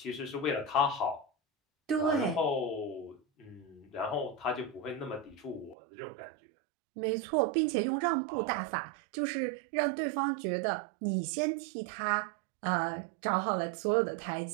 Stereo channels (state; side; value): drops out; left; at 5.8 s